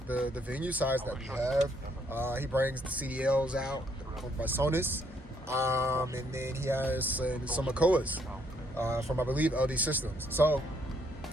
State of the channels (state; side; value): normal; both; correlation 0.70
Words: venue size that we have. He brings the CDLs out by Sonus, and then he has some Makoas from, I believe, LD Systems. So